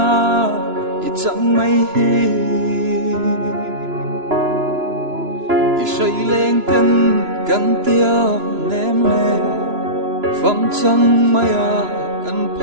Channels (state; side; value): late; left; 2.9 ms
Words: ít chẳng mây hi ít say lên cân tiêu ném lên phong chẳng mây à cần